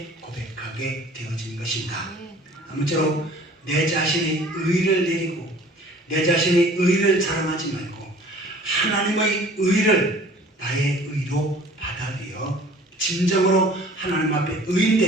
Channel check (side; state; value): both; normal; correlation 0.49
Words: 고백하게 되어진 것입니다. 아무쪼록 내 자신의 의를 내리고 내 자신의 의를 자랑하지 말고 하나님의 의를 나의 의로 받아들여 진정으로 하나님 앞에